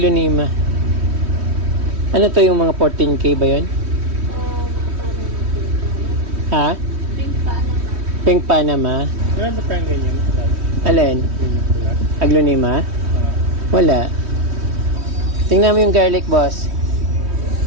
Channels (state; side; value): late; left; 3.1 ms